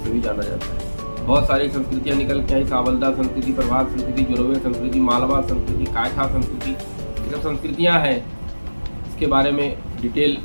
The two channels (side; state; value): both; inverted; correlation -1.00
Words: भी जाना जाता है। बहुत सारी संस्कृतियां निकल के आई, सावलदा संस्कृति, प्रभात संस्कृति, जोरवे संस्कृति, मालवा संस्कृति, कायथा संस्कृति, ये सब संस्कृतियां हैं। इसके बारे में डिटेल